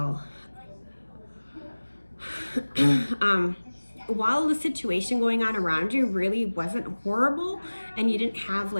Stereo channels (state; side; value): inverted; both; correlation -1.00